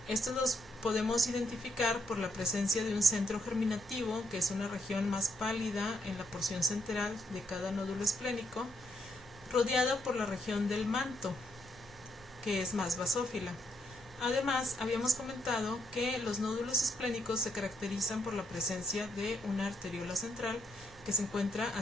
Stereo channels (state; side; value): normal; both; correlation 0.77